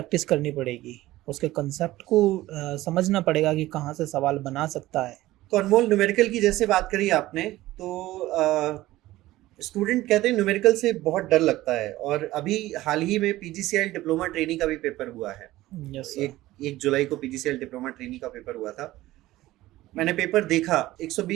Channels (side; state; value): left; quieter; 16.7 dB